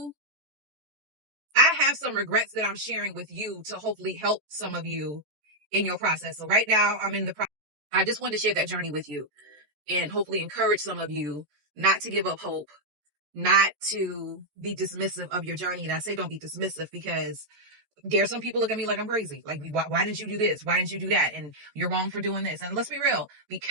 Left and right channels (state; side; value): late; left; 14 ms